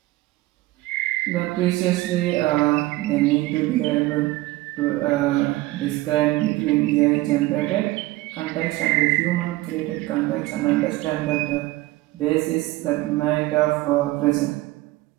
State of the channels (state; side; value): quieter; left; 18.6 dB